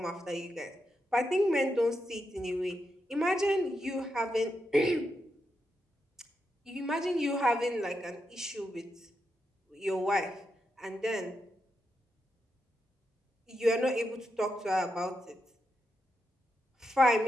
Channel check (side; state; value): both; normal; correlation 0.85